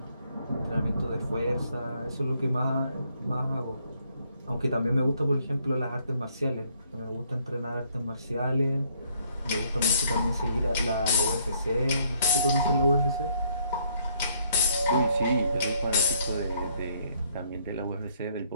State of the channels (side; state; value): both; inverted; correlation -0.68